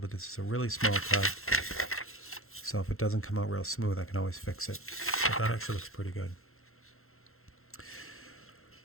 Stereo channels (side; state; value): right; late; 0.62 ms